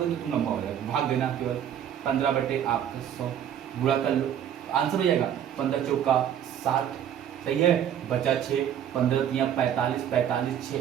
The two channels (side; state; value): left; quieter; 9.7 dB